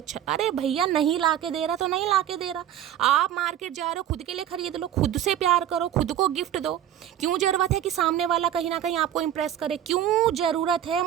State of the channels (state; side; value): quieter; left; 10.9 dB